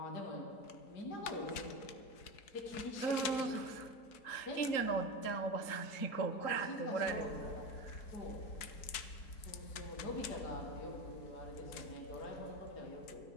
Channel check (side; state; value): right; late; 4.6 ms